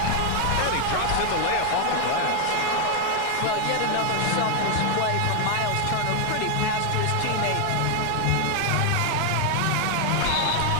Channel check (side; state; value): both; different; correlation 0.00